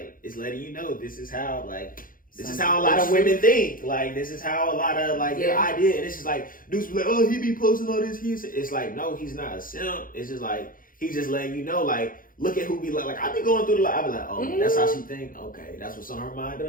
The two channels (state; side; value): late; right; 0.40 ms